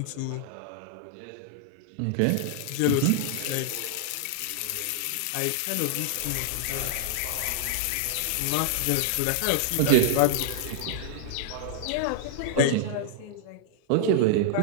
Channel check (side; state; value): both; different; correlation -0.01